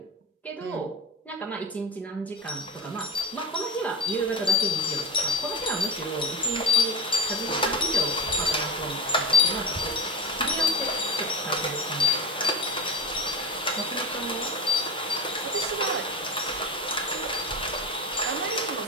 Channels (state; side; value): normal; both; correlation 0.24